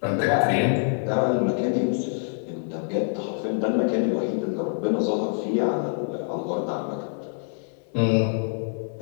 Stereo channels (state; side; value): silent; right; 57 dB below the other